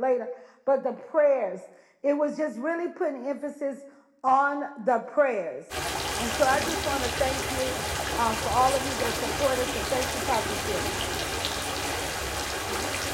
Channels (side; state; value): both; identical; correlation 1.00